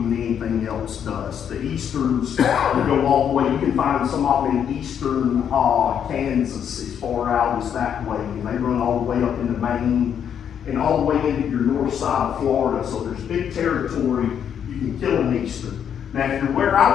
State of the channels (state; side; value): quieter; right; 8.5 dB